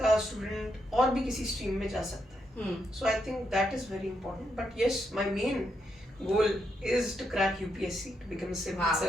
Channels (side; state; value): both; normal; correlation 0.81